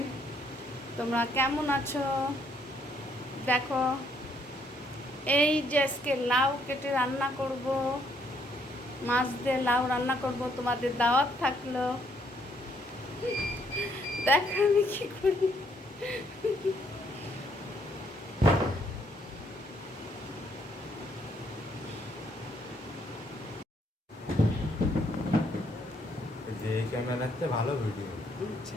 তোমরা কেমন আছো? দেখো, এই যে আজকে লাউ কেটে রান্না করব, মাছ দিয়ে লাউ রান্না করব। তোমাদের দাওয়াত থাকলো। দেখো আমি কি করি। যে ক্যামেরাতে ভালো ভিডিও।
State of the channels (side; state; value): both; normal; correlation 0.69